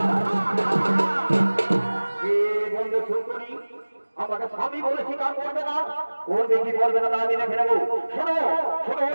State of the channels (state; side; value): inverted; both; correlation -1.00